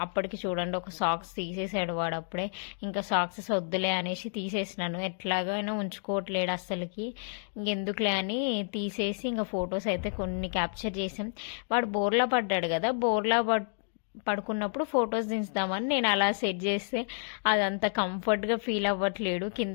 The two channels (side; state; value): right; silent; digital silence